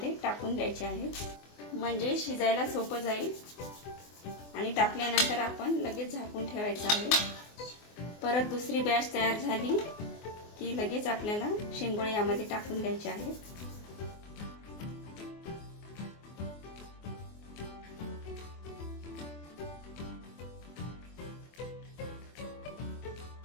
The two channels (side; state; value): right; late; 24 ms